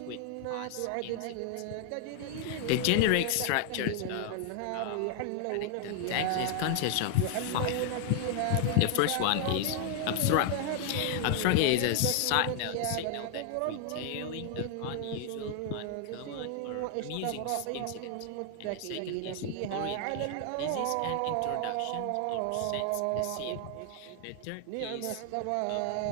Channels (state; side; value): different; both; correlation 0.00